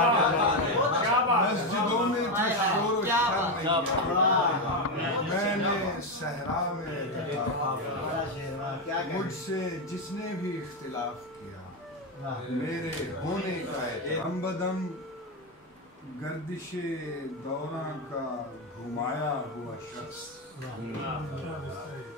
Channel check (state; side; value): normal; both; correlation 0.09